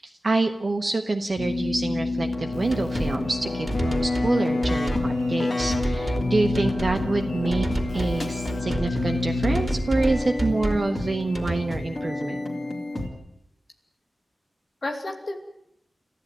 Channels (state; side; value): normal; both; correlation 0.94